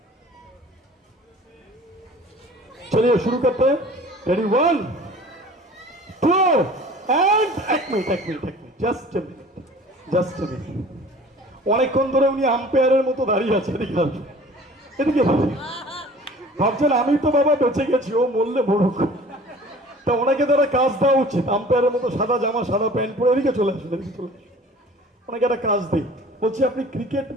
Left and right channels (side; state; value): both; normal; correlation 0.46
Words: চলিয়ে শুরু করতে, রেডি, 1 2 এন্ড এক মিনিট, জাস্ট এ মিনিট। অনেকক্ষণ ধরে উনি আম্পায়ারের মতো দাঁড়িয়ে আছে, এদিকে আসুন, এদিকে ভাবছেন আমি তো বাবা বেঁচে গেছি, ও মরলে মরুক। তা ওনাকে তারা কাজ দেওয়া উচিত, আম্পায়ারের মতো সাদা জামা সাদা প্যান্ট পরে। এদিকে চলে আসুন। ওনাকে একটা কাজ দিই। বলছি, আপনি ক্রিকেট